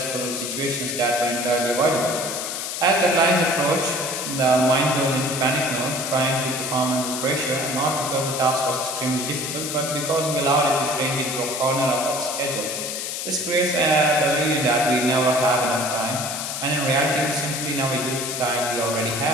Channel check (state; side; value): noise; left; hiss, 4 dB below the sound